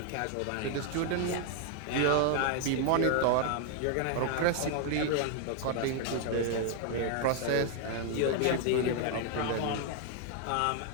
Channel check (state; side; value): different; both; correlation 0.00